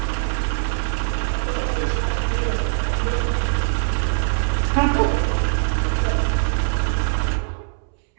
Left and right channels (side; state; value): left; silent; 64 dB below the other